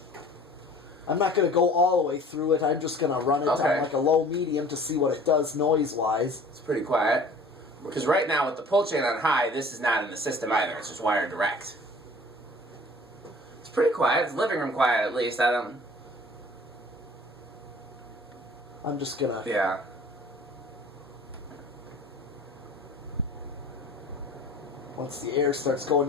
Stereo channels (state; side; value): normal; both; correlation 0.47